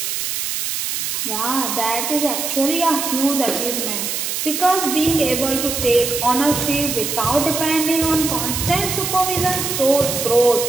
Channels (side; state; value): right; noise; hiss, 2 dB below the sound